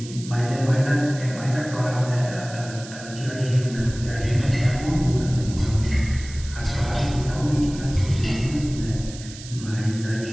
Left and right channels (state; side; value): noise; right; hiss, 15 dB below the sound